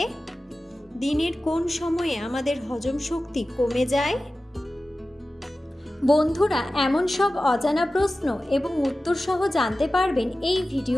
দিনের কোন সময়ে আমাদের হজম শক্তি কমে যায়? বন্ধুরা, এমন সব অজানা প্রশ্ন এবং উত্তর সহ জানতে পারবেন এই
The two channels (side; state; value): both; normal; correlation 0.95